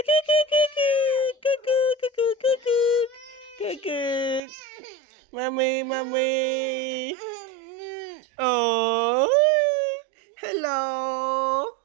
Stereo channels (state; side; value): drops out; left; at 4.4 s